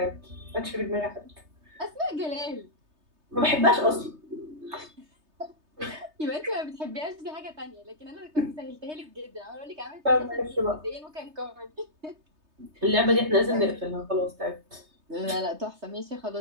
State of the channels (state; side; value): late; left; 3.3 ms